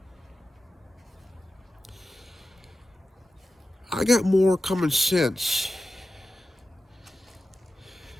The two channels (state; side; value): normal; both; correlation 0.93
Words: I got more common sense